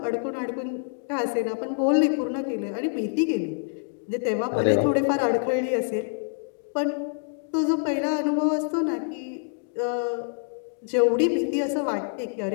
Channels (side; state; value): right; silent; 61 dB below the other